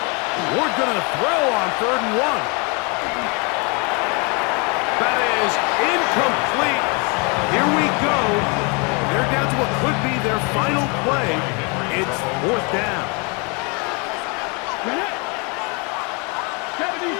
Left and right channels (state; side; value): quieter; right; 32.2 dB